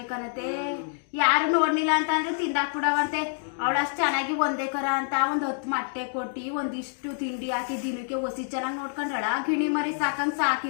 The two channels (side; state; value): right; silent; digital silence